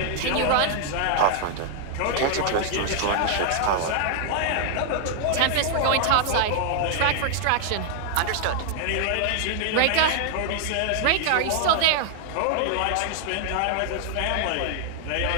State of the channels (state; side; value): different; both; correlation 0.00